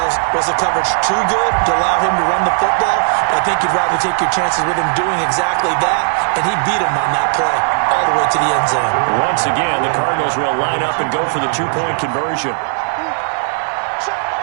was the coverage too good to allow him to run the football? I think you'd rather take your chances with him doing exactly that, and he beat him on that play all the way to the end zone. Once again, the Cardinals will line up and go for the 2-point conversion.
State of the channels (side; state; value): left; silent; digital silence